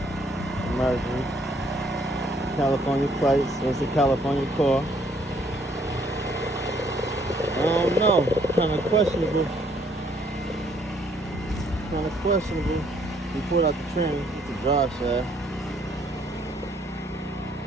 Mercury. California plates. It's a California car. I don't know. Kind of questionable. We pulled out the trim. It's a drive shaft.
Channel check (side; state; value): both; normal; correlation 0.66